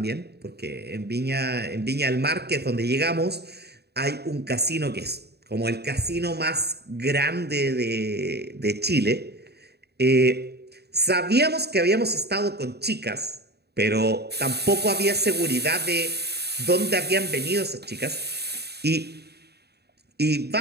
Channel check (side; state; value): left; late; 0.48 ms